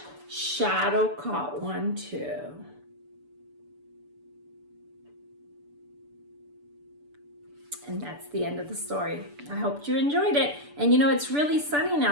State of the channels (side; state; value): left; late; 6.9 ms